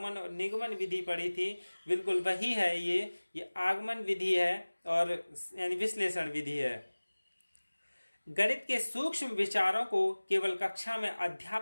और निगमन विधि पढ़ी थी, बिल्कुल वही है। ये आगमन विधि है और यानी विश्लेषण विधि है। गणित के सूक्ष्म विचारों को केवल कक्षा में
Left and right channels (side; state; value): both; inverted; correlation -1.00